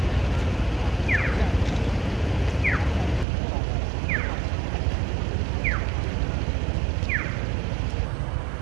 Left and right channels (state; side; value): drops out; left; at 3.2 s